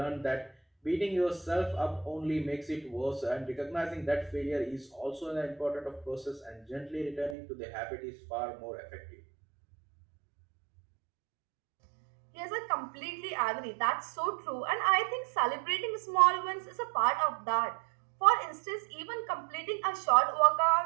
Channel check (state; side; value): drops out; left; at 7.4 s